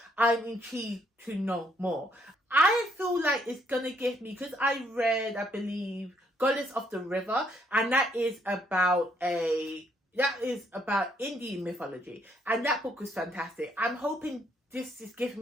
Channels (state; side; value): normal; both; correlation 0.70